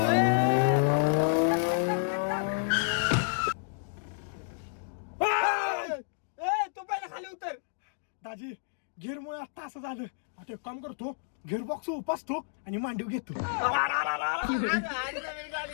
तू पहिला खाली उतर. दाजी घेरमुळे आता असं झालं. आता एक काम करतो, घेर बॉक्स उपासतो आणि मांडीव घेतो.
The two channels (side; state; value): right; silent; digital silence